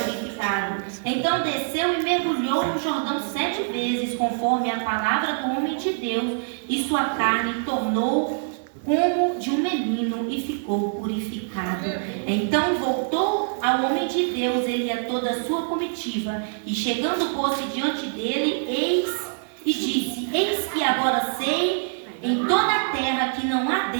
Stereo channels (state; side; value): silent; left; 62 dB below the other